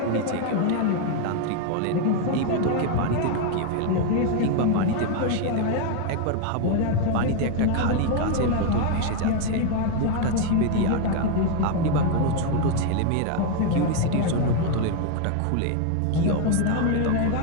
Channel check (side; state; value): both; different; correlation 0.01